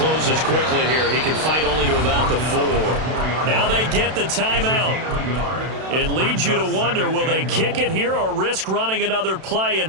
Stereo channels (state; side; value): late; left; 32 ms